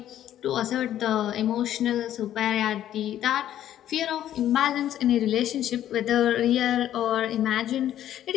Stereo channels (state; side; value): quieter; right; 11.7 dB